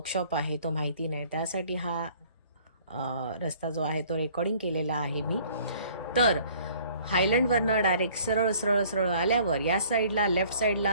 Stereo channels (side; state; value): both; inverted; correlation -0.55